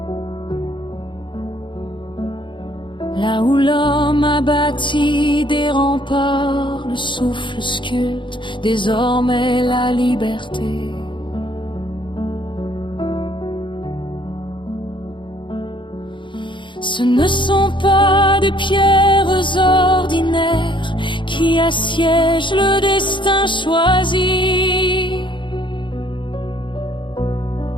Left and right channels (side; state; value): right; late; 0.23 ms